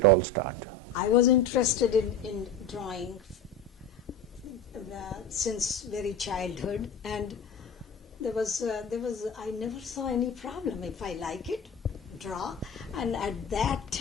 all start? I was interested in drawing since very childhood, and there was I never saw any problem. If I like it, draw. And at that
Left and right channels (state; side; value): normal; both; correlation 0.30